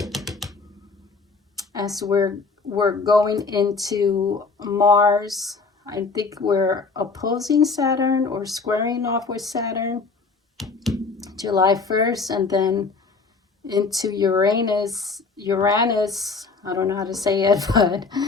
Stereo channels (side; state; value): right; quieter; 4.4 dB